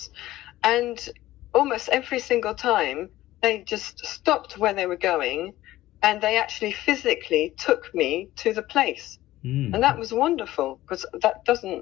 And almost every single time, they just stopped where they were going, and they actually physically took me to the place. And that was wonderful because that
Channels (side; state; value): right; quieter; 15.7 dB